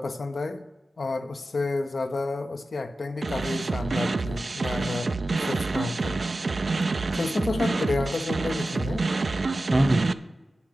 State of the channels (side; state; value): both; normal; correlation 0.93